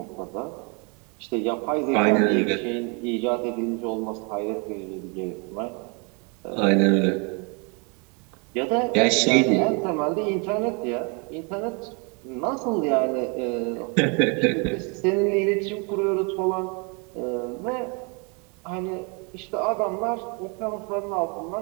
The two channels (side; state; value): left; quieter; 33.5 dB